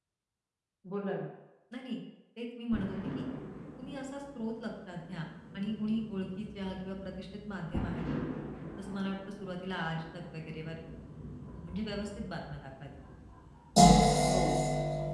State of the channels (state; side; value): identical; both; correlation 1.00